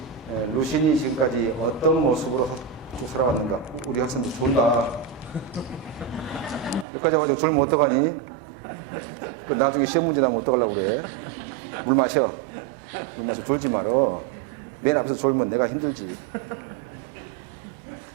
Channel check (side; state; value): left; drops out; at 6.9 s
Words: 루신이 지금까지 어떤 모습으로 쭉 살아왔는가. 우리 학생도 졸다. 여기까지 와가지고 졸면 어떡하니? 나중에 시험 문제 나면 어떡하려고 그래? 물 마셔. 물 마셔. 졸지 말어. 맨 앞에서 졸면 내가 힘들지.